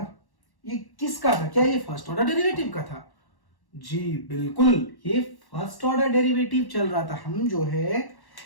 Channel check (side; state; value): right; late; 1.1 ms